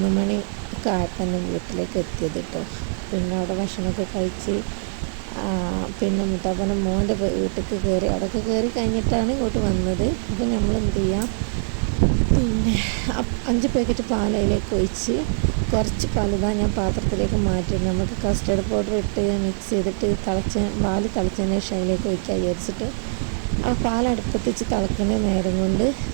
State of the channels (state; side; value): silent; left; digital silence